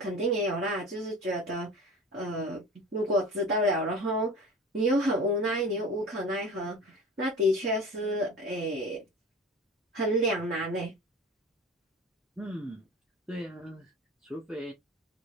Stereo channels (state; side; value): normal; both; correlation 0.36